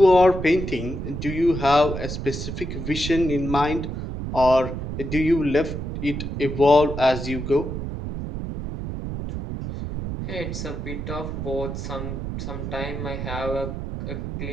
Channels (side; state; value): right; noise; rumble, 5 dB below the sound